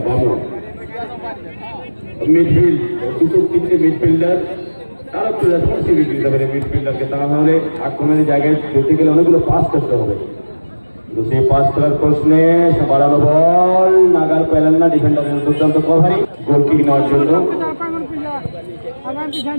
বামু মিডফিল্ড দুটো তিনটে মিডফিল্ডার তারা একটু রেসপন্সিবিলিটি দিতে পারে মিডফিল্ডারকে, তাহলে আক্রমণের জায়গায় যেতে গেলে অনেকগুলো পাস করতে হবে, কিন্তু সেই পাস করার প্রশ্নে বাড়ানো বল নাগাল পেলেন না, ডিফেন্ডারের দুর্দান্ত কভারিং গোল কিক নেওয়ার জন্য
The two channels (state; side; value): inverted; both; correlation -1.00